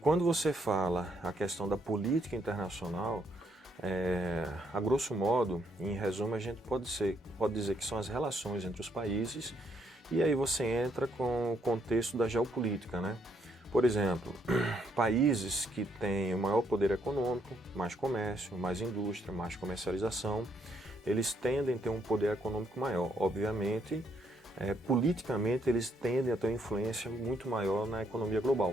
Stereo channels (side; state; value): both; normal; correlation 0.72